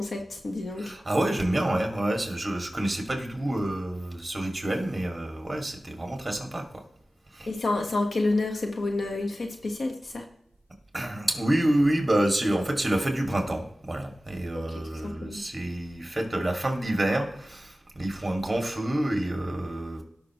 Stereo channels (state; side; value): normal; both; correlation 0.96